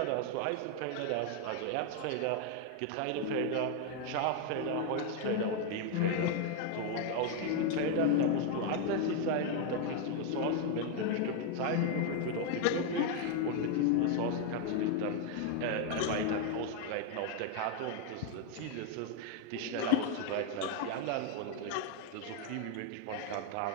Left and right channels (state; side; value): different; both; correlation 0.01